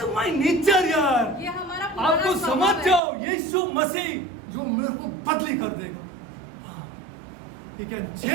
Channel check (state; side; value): drops out; left; at 3.0 s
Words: is my nature यार. ये हमारा आप पुराना तो स्वभाव समझ है। जाओ यीशु मसीह जो मेरे को बदली कर देगा. He can